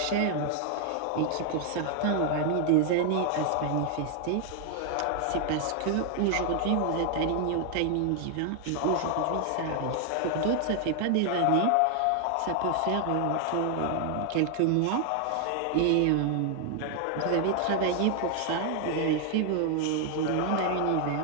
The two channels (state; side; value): different; both; correlation 0.00